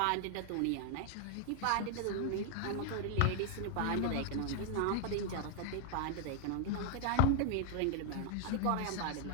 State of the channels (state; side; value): different; both; correlation 0.00